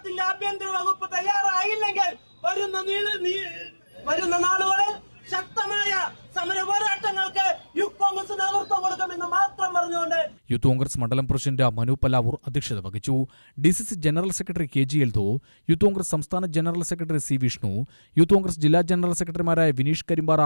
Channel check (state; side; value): inverted; both; correlation -1.00